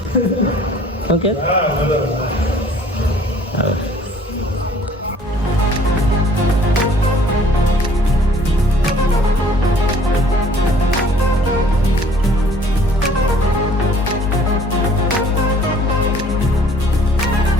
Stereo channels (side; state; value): both; normal; correlation 0.55